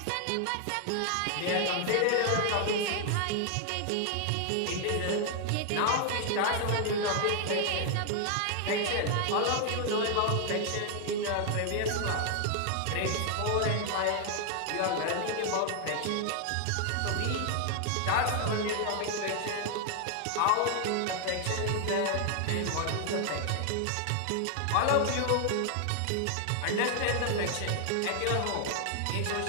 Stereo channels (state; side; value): different; both; correlation 0.00